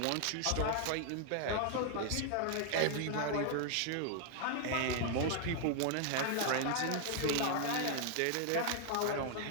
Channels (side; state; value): both; different; correlation 0.00